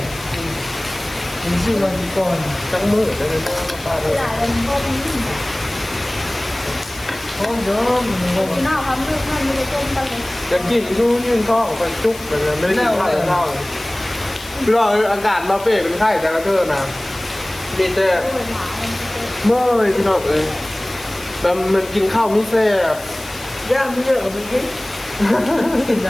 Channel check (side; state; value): left; noise; hiss, 17 dB below the sound